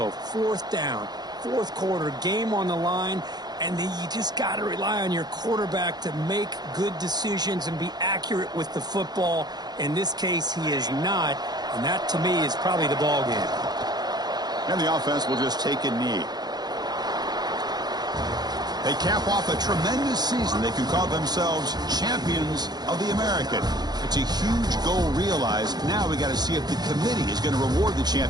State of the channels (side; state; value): left; late; 0.20 ms